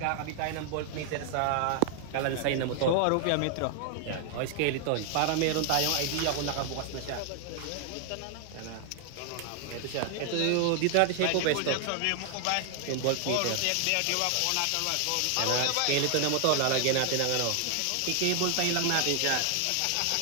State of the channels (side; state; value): both; different; correlation 0.00